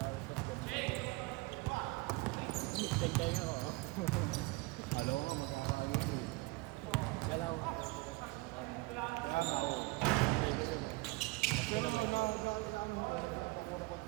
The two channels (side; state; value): left; quieter; 23.6 dB